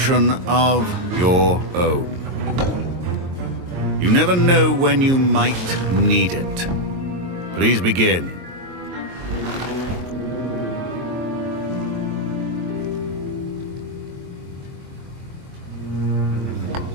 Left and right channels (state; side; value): late; left; 22 ms